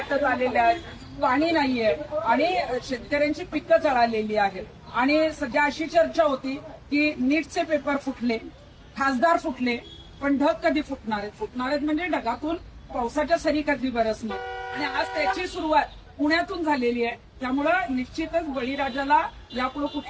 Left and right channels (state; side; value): identical; both; correlation 1.00